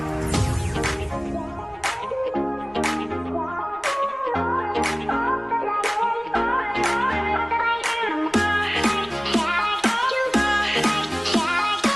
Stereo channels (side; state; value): left; noise; rumble, 28 dB below the sound